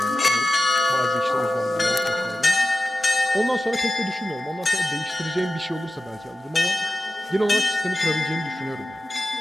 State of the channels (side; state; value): both; normal; correlation 0.94